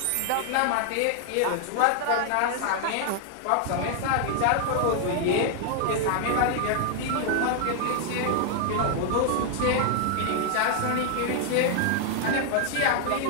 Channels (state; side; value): different; both; correlation 0.00